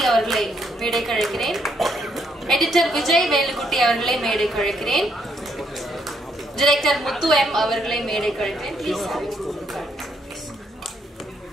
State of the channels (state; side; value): normal; both; correlation 0.73